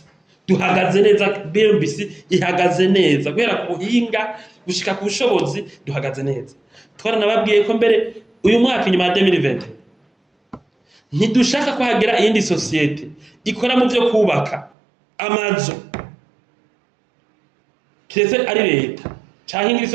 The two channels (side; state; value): left; drops out; at 14.7 s